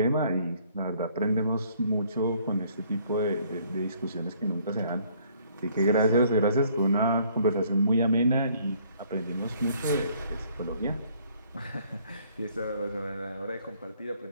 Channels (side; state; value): both; inverted; correlation -0.62